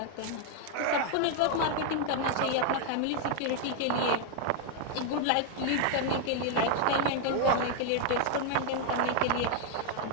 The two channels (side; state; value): both; different; correlation 0.00